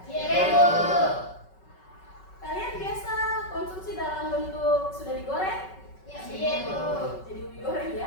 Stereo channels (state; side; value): late; right; 5.3 ms